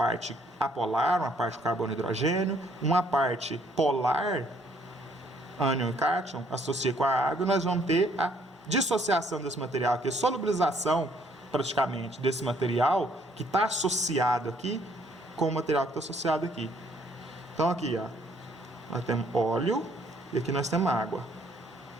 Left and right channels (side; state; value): both; normal; correlation 0.65